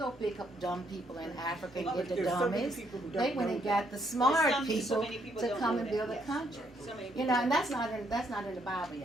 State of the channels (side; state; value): both; normal; correlation 0.72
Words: pick up dumb people in Africa and get the There's so many dummies. people who don't They went know and that. got the smart so people many people to don't come know and that, build a yes. country. So many You people know, don't and know. that's not in the Bible,